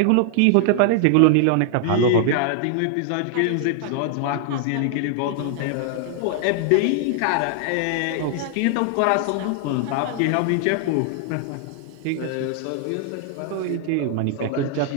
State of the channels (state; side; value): different; both; correlation 0.00